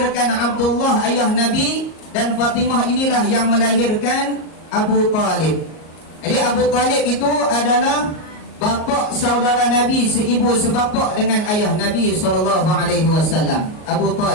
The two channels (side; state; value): right; late; 38 ms